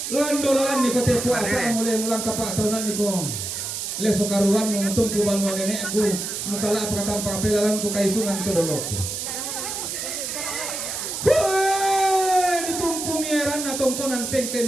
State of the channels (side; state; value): right; noise; hiss, 4 dB below the sound